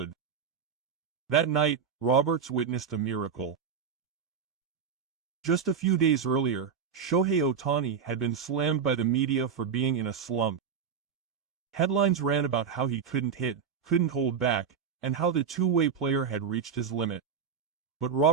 That night, Roberts witnessed a miracle. Just a few days earlier, Shohei Ohtani had been slammed by the media for being in a slump. Headlines ran about how he couldn't hit, couldn't hold back, and how the two-way player had reached his limit. But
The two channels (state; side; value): quieter; left; 6.7 dB